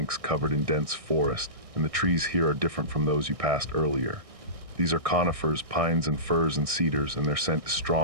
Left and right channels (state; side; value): late; left; 1.6 ms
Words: covered in dense forest, and the trees here are different from those you passed earlier. These are conifers, pines and firs and cedars, and their scent is